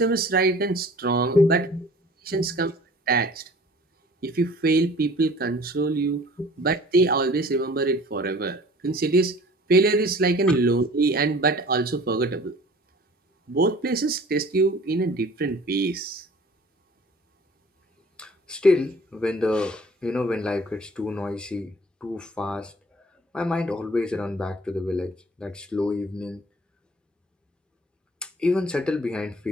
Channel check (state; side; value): normal; both; correlation 0.48